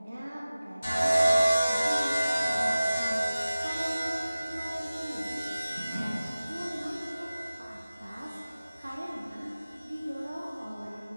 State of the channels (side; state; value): both; inverted; correlation -0.97